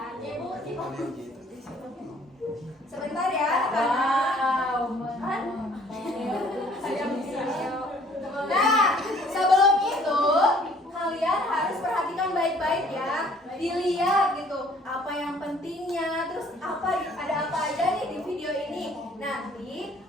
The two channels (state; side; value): normal; both; correlation 0.57